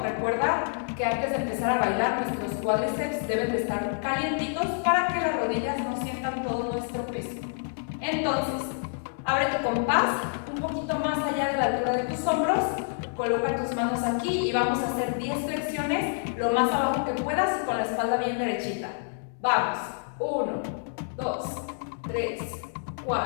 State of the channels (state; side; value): silent; right; 60 dB below the other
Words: Recuerda que antes de empezar a bailar, nuestros cuádriceps deben de estar calientitos para que las rodillas no sientan todo nuestro peso. Entonces, abre tu compás un poquito más allá de la altura de tus hombros, coloca tus manos aquí y vamos a hacer 10 flexiones lo más abajo que puedas y con la espalda bien derechita. Vamos, 1, 2, 3,